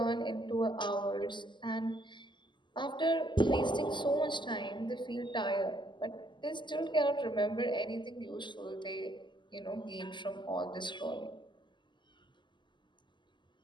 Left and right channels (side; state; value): right; late; 0.22 ms